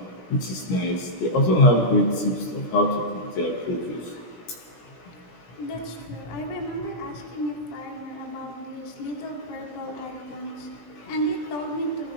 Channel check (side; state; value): right; late; 17 ms